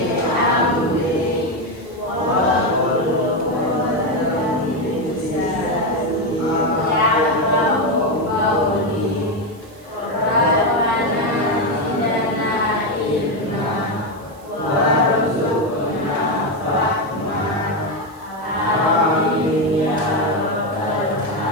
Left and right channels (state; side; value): noise; right; hiss, 27 dB below the sound